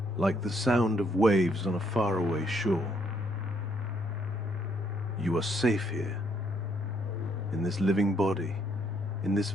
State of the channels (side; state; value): both; normal; correlation 0.71